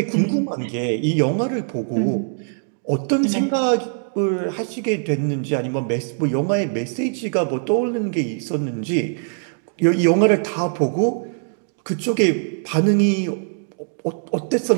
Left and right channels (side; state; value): left; silent; digital silence